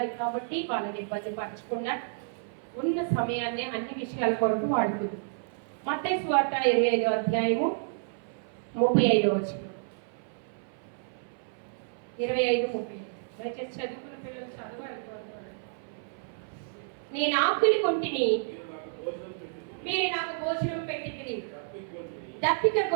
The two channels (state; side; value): silent; left; 56 dB below the other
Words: కాబట్టి వాళ్ళని ఇబ్బంది పరచకుండా ఉన్న సమయాన్ని అన్ని విషయాల కొరకు వాడుకుందాం. మత్తయి సువార్త 25:35 25:30 దయచేసి చదువుకున్న పిల్లలు చదవాలి. నేను ఆకలి కొంటిని, మీరు నాకు భోజనం పెట్టితిరి, దప్పిక